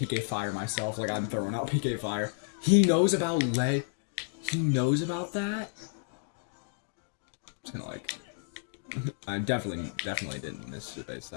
Fire myself, like I'm throwing out PK Fire. He knows about lead. He knows about that? I'm just gonna like... I definitely didn't miss the base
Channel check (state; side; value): silent; right; digital silence